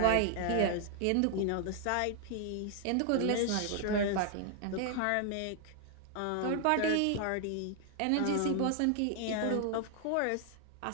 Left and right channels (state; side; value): different; both; correlation 0.00